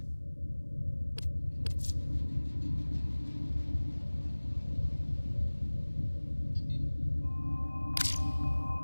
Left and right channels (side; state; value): both; inverted; correlation -1.00